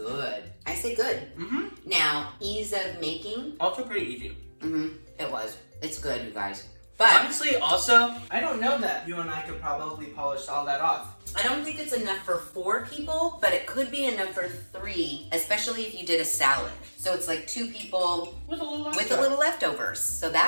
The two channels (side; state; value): both; inverted; correlation -1.00